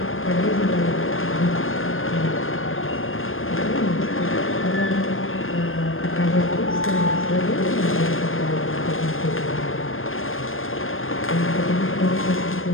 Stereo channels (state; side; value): late; right; 0.59 ms